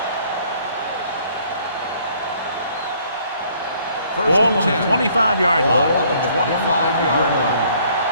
Ball on the 25-yard line. On the 25-yard line.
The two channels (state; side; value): inverted; both; correlation -0.61